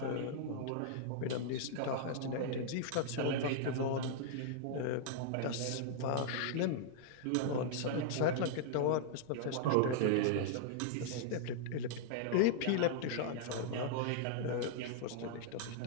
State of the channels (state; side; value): different; both; correlation -0.01